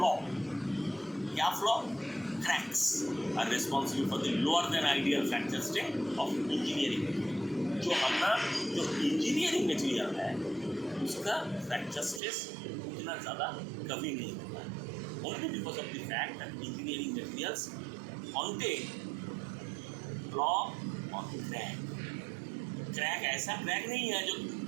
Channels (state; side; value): drops out; left; at 12.2 s